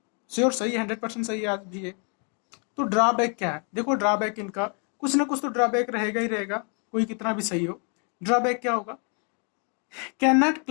श्योर सही है, 100% सही है आज भी है। तो ड्रॉबैक क्या है? देखो, ड्रॉबैक इनका कुछ ना कुछ तो ड्रॉबैक रहेगा ही रहेगा, कोई कितना भी सही हो। ड्रॉबैक क्या होगा? Can not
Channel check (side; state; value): right; quieter; 38.8 dB